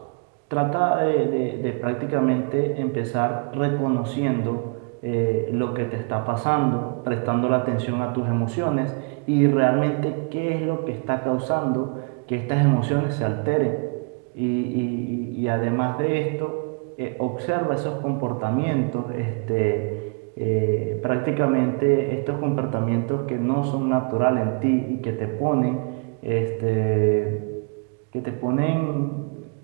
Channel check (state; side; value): quieter; left; 36.3 dB